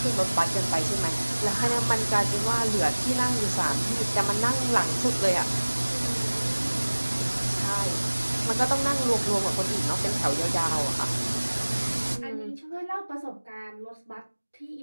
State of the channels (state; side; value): inverted; both; correlation -1.00